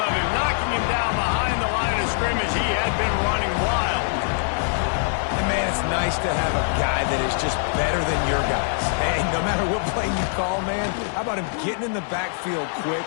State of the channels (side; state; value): right; silent; digital silence